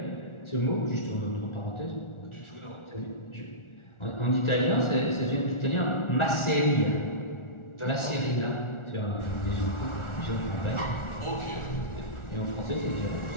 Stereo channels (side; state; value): right; late; 1.4 ms